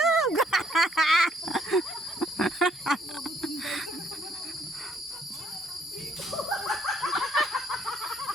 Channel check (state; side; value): normal; both; correlation 0.67